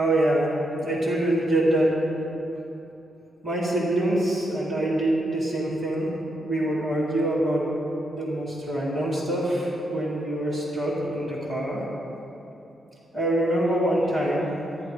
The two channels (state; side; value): normal; both; correlation 0.79